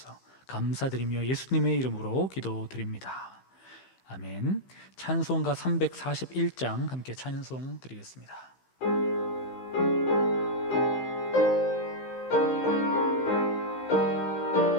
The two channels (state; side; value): late; right; 15 ms